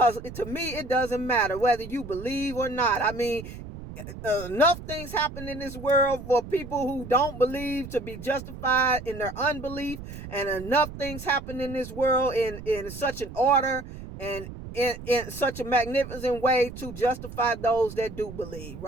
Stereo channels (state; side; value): noise; right; rumble, 12 dB below the sound